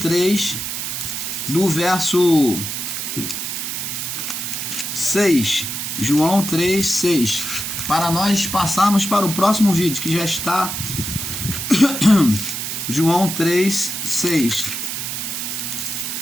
do verso 6. João 3, 6. Para nós passarmos para o próximo vídeo, que já está. João 3, 6.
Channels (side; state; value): right; noise; hiss, 4 dB below the sound